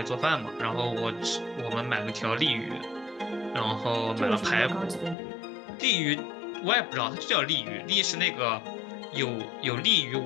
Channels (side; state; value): right; drops out; at 5.2 s